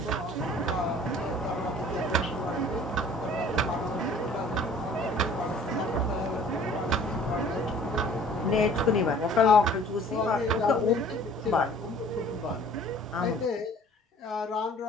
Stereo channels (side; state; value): both; normal; correlation 0.51